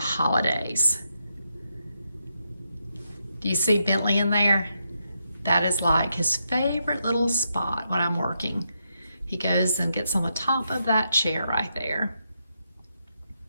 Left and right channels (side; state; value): both; inverted; correlation -0.82